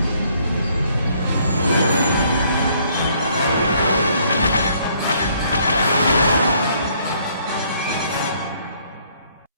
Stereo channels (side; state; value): both; inverted; correlation -0.65